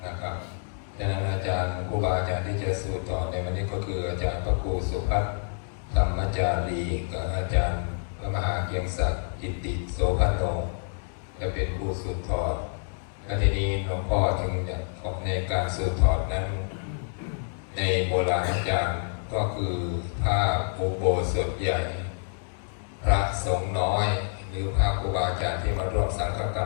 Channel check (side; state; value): right; silent; digital silence